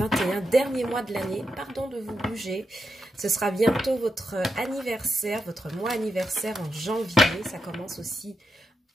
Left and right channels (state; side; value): normal; both; correlation 0.85